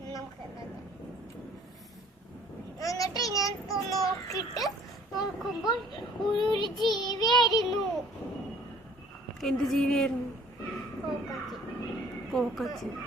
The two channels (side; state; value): both; normal; correlation 0.54